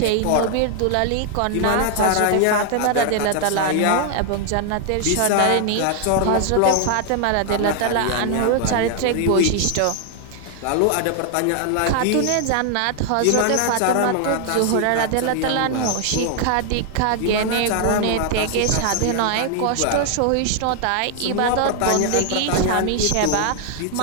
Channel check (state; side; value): different; both; correlation 0.00